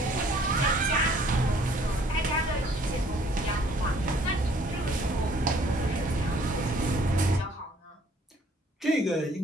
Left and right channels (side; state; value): both; normal; correlation 0.59